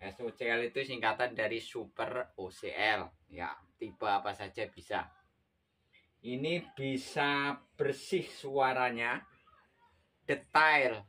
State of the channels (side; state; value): both; identical; correlation 1.00